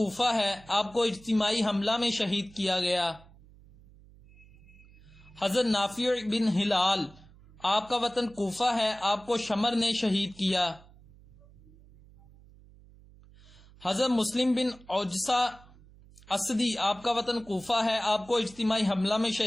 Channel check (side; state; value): right; noise; hum, 24 dB below the sound